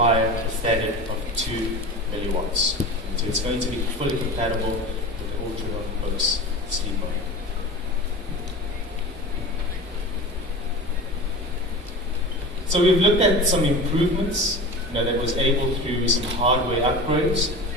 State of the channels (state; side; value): normal; both; correlation 0.32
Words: a standard of 2 milliwatts. And so it's going to be fully compatible with the Ultrabooks sleep mode. So we've looked at some improvements that was able through some hardware upgrades.